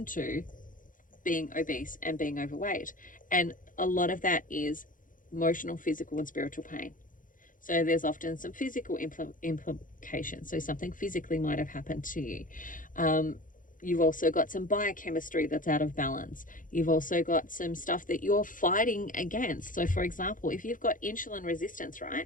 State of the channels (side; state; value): right; late; 0.39 ms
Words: being obese and being overweight. And a lot of that is emotional, physical, and spiritual pain. So there's often some physical implications. So something physically might have happened to you. You've also got some biochemistry that's out of balance. You've also got some stuff that you're fighting against. So for example, if you've got insulin resistance,